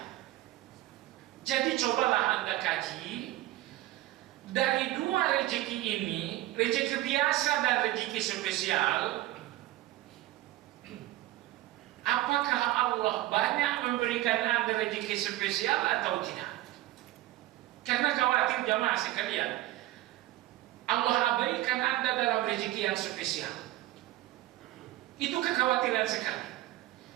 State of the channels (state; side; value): quieter; left; 16.0 dB